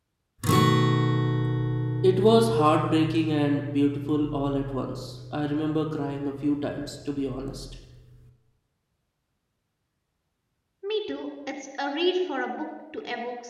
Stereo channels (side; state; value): both; identical; correlation 1.00